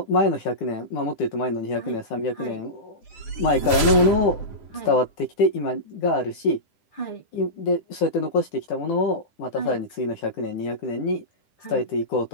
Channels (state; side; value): late; right; 9.9 ms